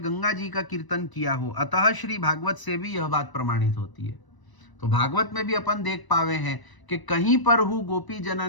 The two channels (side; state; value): right; late; 1.0 ms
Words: जी का कीर्तन किया हो, अतः श्री भागवत से भी यह बात प्रमाणित होती है। तो भागवत में भी अपन देख पावे हैं कि कहीं पर हु गोपी